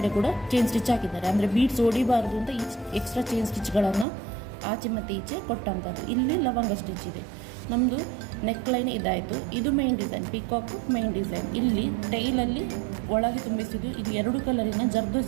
ಕೂಡ ಚೈನ್ ಸ್ಟಿಚ್ ಹಾಕಿದ್ದಾರೆ. ಅಂದರೆ ಬೀಡ್ಸ್ ಹೊಡಿಬಾರ್ದು ಅಂತ ಎಕ್ಸ್ಟ್ರಾ ಚೈನ್ ಸ್ಟಿಚ್ಗಳನ್ನು ಆಚೆ ಮತ್ತು ಈಚೆ ಕೊಟ್ಟಂಥದ್ದು. ಇಲ್ಲಿ ಲವಂಗ ಸ್ಟಿಚ್ ಇದೆ. ನಮ್ಮದು ನೆಕ್ ಲೈನ್ ಇದಾಯಿತು. ಇದು main design, peacock main design. ಇಲ್ಲಿ ಟೈಲಲ್ಲಿ ಒಳಗೆ ತುಂಬಿಸಿದ್ದು, ಇದು 2 ಕಲರಿನ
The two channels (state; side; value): drops out; left; at 4.0 s